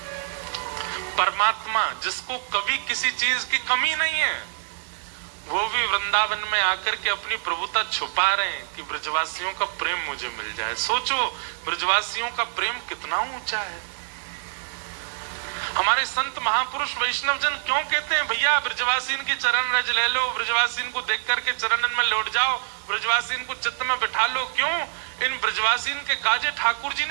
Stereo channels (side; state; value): left; silent; digital silence